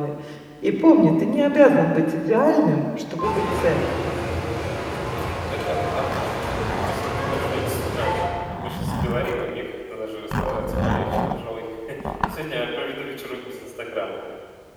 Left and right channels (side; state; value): both; identical; correlation 1.00